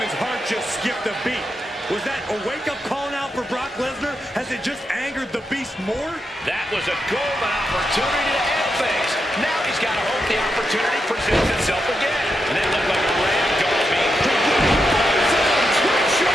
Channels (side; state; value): both; normal; correlation 0.85